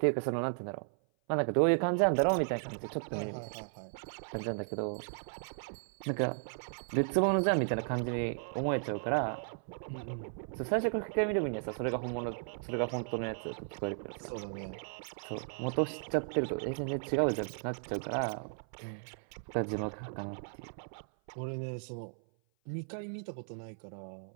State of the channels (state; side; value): silent; left; 54 dB below the other